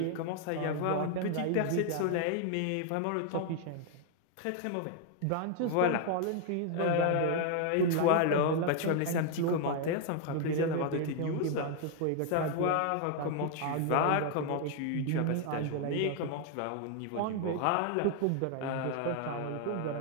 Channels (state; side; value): different; both; correlation 0.00